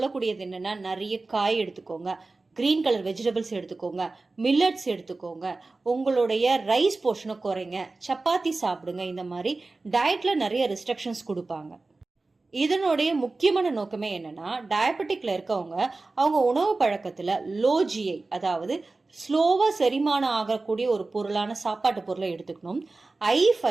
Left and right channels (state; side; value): quieter; left; 3.5 dB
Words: என்னன்னா, நிறைய காய் எடுத்துக்கோங்க, கிரீன் கலர் வெஜிடபிள்ஸ் எடுத்துக்கோங்க, மில்லட்ஸ் எடுத்துக்கோங்க, உங்களுடைய ரைஸ் போர்ஷனை குறைங்க, சப்பாத்தி சாப்பிடுங்க. இந்த மாதிரி டயட்ல நிறைய ரெஸ்ட்ரிக்ஷன்ஸ் கொடுப்பாங்க. இதனுடைய முக்கியமான நோக்கமே என்னன்னா, டயபெட்டிக்ல இருக்கவங்க அவங்க உணவு பழக்கத்துல லோ ஜிஐ, அதாவது ஸ்லோவா செரிமானம் ஆகக்கூடிய ஒரு பொருளான சாப்பாட்டு பொருளை எடுத்துக்கணும், ஹை